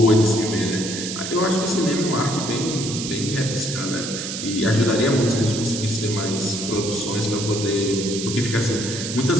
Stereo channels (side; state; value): right; noise; hiss, 6 dB below the sound